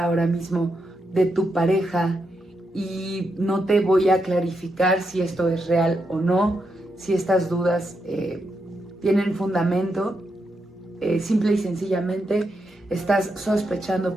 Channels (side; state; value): both; normal; correlation 0.83